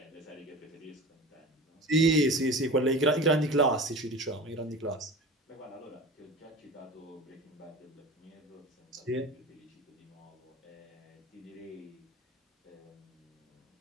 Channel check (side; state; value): both; normal; correlation 0.35